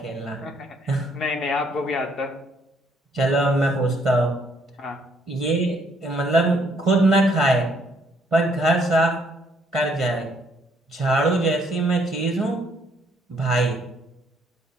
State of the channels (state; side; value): normal; both; correlation 0.68